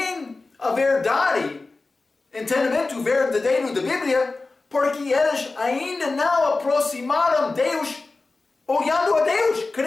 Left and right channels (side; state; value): right; quieter; 3.6 dB